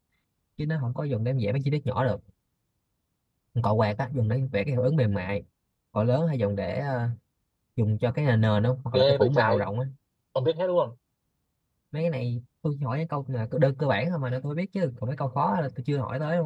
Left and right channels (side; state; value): both; identical; correlation 1.00